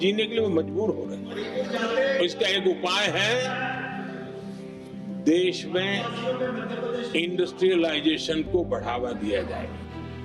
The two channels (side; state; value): both; identical; correlation 1.00